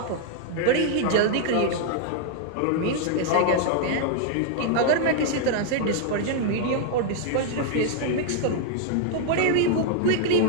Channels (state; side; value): different; both; correlation 0.00